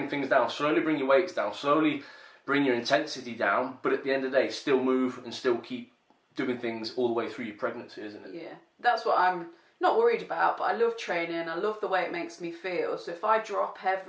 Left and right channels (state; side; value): identical; both; correlation 1.00